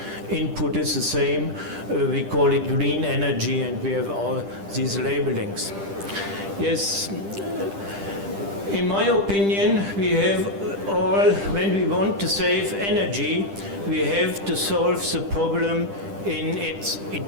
input is the same. We call it green energy, and we have all these labelings. Yes. In my opinion, we have all, when we want to save energy, we have to solve the problem in its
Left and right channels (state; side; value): late; left; 10 ms